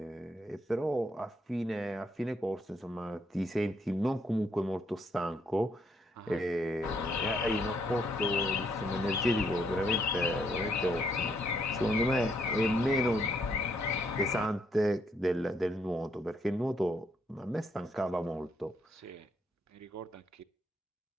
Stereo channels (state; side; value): normal; both; correlation 0.73